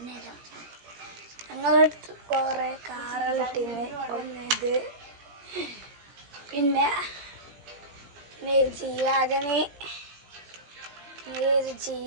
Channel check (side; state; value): left; late; 17 ms